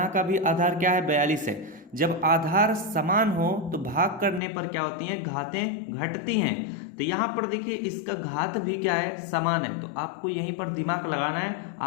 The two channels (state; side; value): drops out; right; at 4.4 s